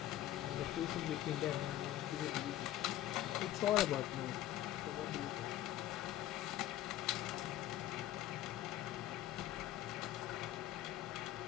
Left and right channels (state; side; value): quieter; right; 13.4 dB